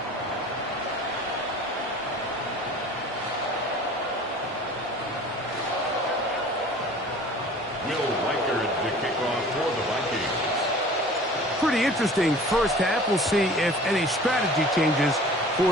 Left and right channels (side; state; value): both; normal; correlation 0.45